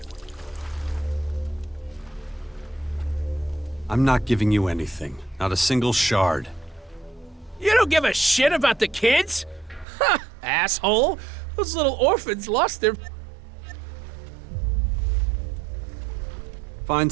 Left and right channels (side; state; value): left; drops out; at 9.9 s